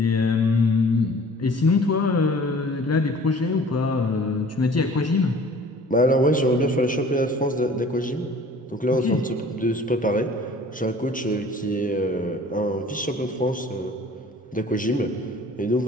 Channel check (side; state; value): both; normal; correlation 0.49